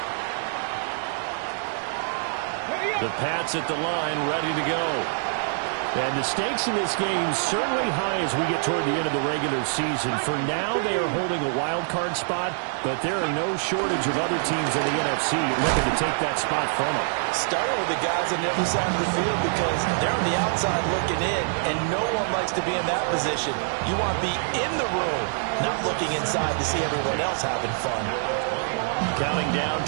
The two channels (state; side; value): silent; left; digital silence